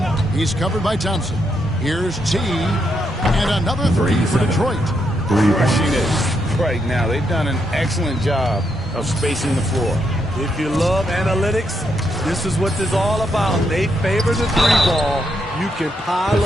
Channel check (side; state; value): both; normal; correlation 0.79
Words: He's covered by Thompson. Here's T. And another 3 for Detroit. Rushing it right now. They've done an excellent job of spacing the floor. If you love analytics, this is what this is all about. They favor the 3-ball. You can pile